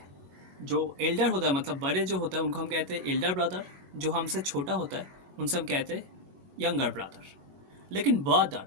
जो एल्डर होता है, मतलब बड़े जो होता है उनको हम कहते हैं एल्डर ब्रदर। जो हमसे छोटा होता है उनसे हम कहते हैं यंगर ब्रदर। लेकिन ब्रदर,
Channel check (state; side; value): late; left; 21 ms